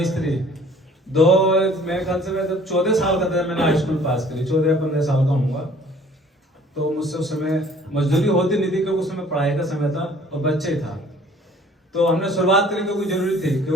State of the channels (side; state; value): both; normal; correlation 0.54